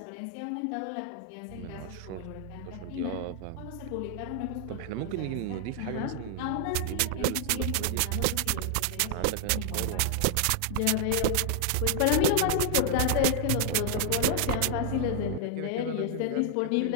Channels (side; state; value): both; different; correlation 0.00